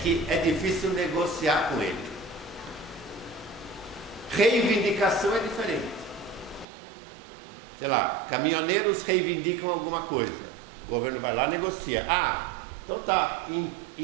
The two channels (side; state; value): left; drops out; at 6.7 s